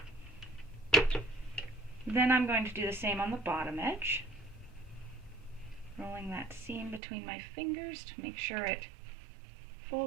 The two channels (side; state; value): left; drops out; at 7.0 s